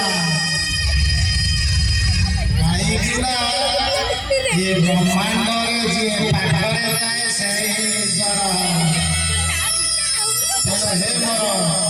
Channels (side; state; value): both; identical; correlation 1.00